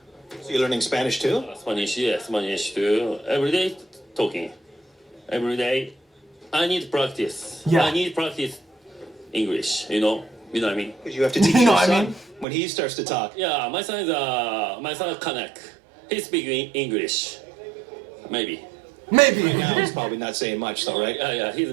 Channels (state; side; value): drops out; left; at 12.5 s